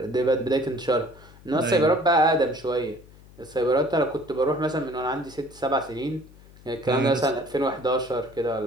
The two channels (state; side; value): noise; left; hum, 23 dB below the sound